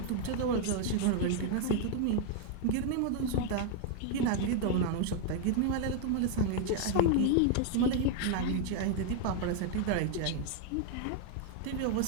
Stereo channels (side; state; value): both; different; correlation 0.00